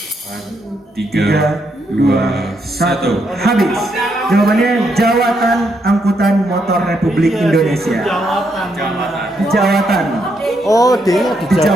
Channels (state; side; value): normal; both; correlation 0.77